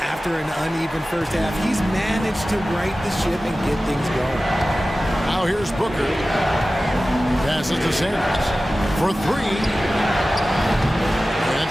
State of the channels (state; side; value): normal; both; correlation 0.96